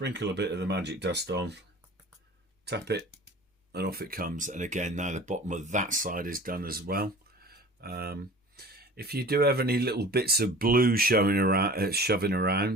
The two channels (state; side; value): normal; both; correlation 0.42